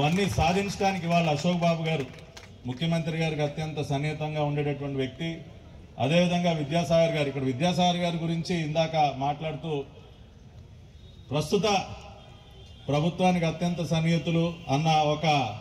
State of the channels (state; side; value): identical; both; correlation 1.00